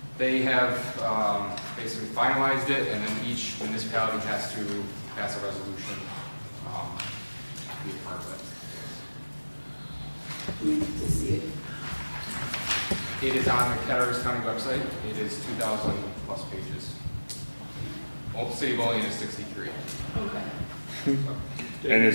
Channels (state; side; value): inverted; both; correlation -1.00